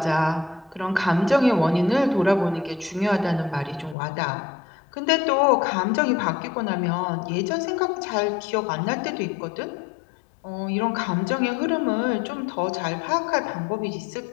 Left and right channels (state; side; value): drops out; right; at 4.0 s